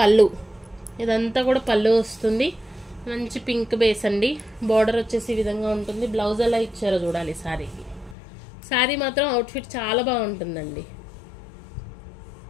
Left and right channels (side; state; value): right; drops out; at 8.2 s